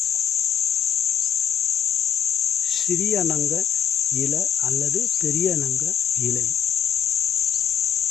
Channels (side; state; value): right; quieter; 8.6 dB